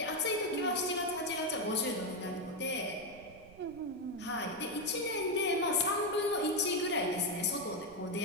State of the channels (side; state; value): right; noise; rumble, 22 dB below the sound